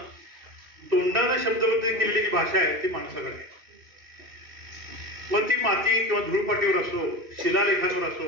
तोंडानं शब्दबद्ध केलेली जी भाषा आहे ती माणसाकडे आहे. मग ती माती किंवा धूळपाटीवर असो, शिलालेखांवर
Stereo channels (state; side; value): late; left; 2.7 ms